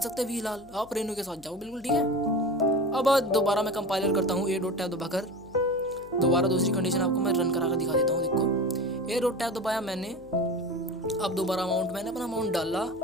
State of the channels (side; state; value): left; noise; hum, 24 dB below the sound